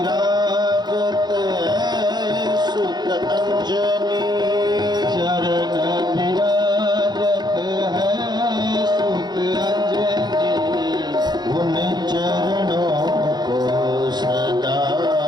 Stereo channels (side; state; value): left; late; 0.20 ms